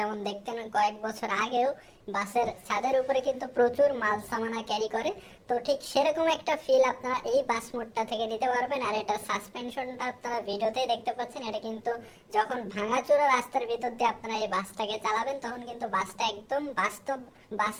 দেখতেন কয়েক বছর আগেও, বাসের ছাদের উপরে কিন্তু প্রচুর মাল সামানা ক্যারি করে। তো ঠিক সেরকম একটা ফিল আপনারা এই বাস মোডটা থেকে নিতে পারবেন। আর এটা সাসপেনশনটা আপনারা ভিডিওতেই দেখতে পাচ্ছেন। এটা কিন্তু যখন ভাঙাচোরা রাস্তার ভিতর দিয়ে আপনারা এই বাসটাকে চালাবেন, তখন কিন্তু বাসটা একদম বাস্তব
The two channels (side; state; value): both; identical; correlation 1.00